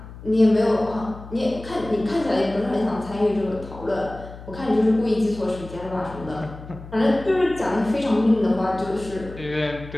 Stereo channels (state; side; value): noise; left; hum, 15 dB below the sound